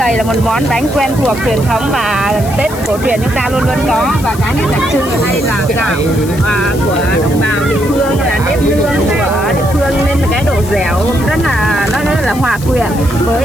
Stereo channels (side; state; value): left; noise; hiss, 15 dB below the sound